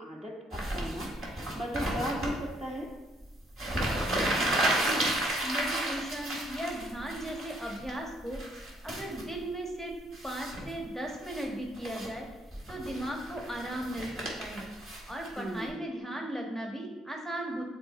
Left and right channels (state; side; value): normal; both; correlation 0.68